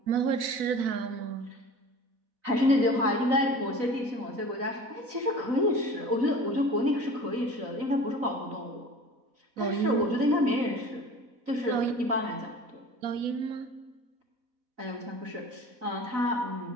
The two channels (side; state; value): left; late; 4.1 ms